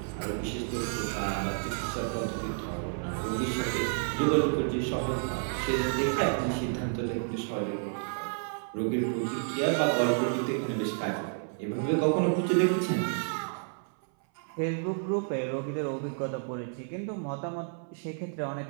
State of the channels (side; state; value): left; silent; 57 dB below the other